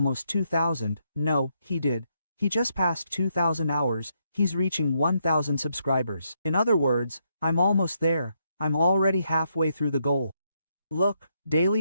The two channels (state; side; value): inverted; both; correlation -0.78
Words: 2,000. No, he did. He just passed 2,000 hours. He's reaching 1,000 subscribers. In other words, I'm almost there. I'm already halfway through the goal. Look,